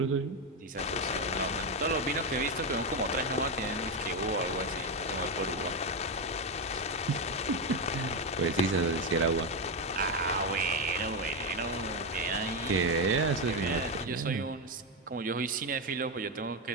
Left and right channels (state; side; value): normal; both; correlation 0.08